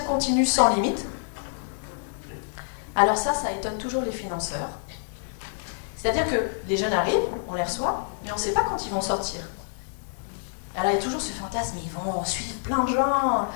continu sans limite. Alors ça étonne toujours les financeurs. C'est-à-dire que les jeunes arrivent, on les reçoit, mais on ne sait pas quand ils vont sortir. Alors il y a toujours ce fantasme, ils vont suivre plein de gens.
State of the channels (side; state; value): right; silent; digital silence